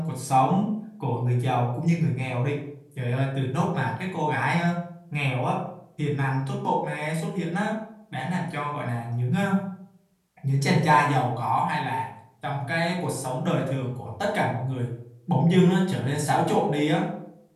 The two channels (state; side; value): identical; both; correlation 1.00